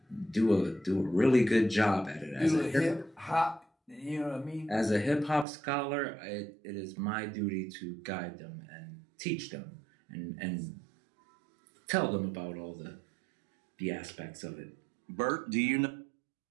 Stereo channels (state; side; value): drops out; left; at 5.5 s